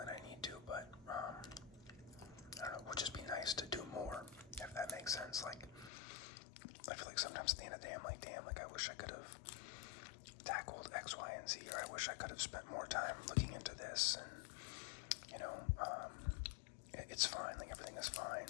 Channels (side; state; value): right; drops out; at 5.9 s